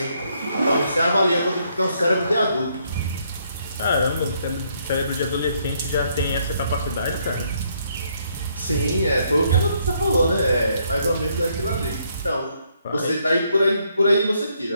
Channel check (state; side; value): inverted; both; correlation -0.71